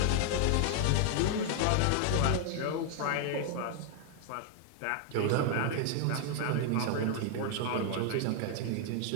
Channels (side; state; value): both; different; correlation 0.00